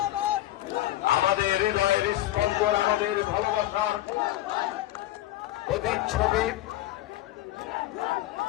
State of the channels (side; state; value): right; quieter; 15.1 dB